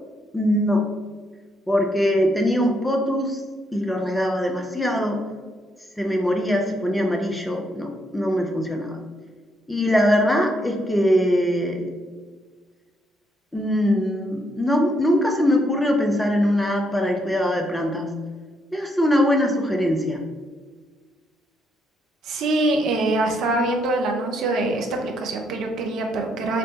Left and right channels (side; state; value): both; normal; correlation 0.75